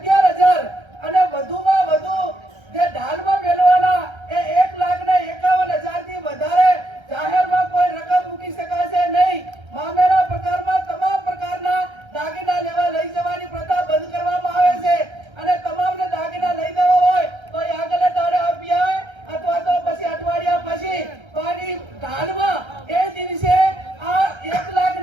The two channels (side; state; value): left; late; 1.3 ms